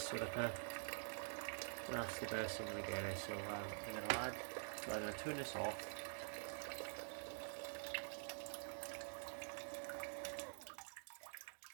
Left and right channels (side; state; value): left; silent; digital silence